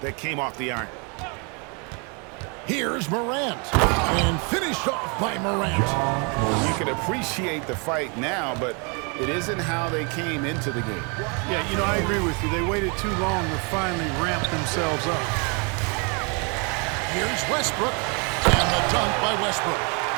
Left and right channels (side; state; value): left; quieter; 33.8 dB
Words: that came off the iron. Here's MORANT. And finished off by MORANT. You can appreciate the fight now, but it isn't how they came into the game. Yeah, you know, I agree with you. They waited too long to finally ramp themselves up. Here's Westbrook. And the dunk by Westbrook.